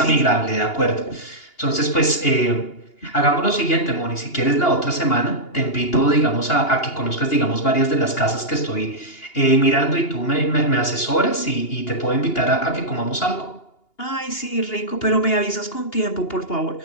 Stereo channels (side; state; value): right; late; 2.8 ms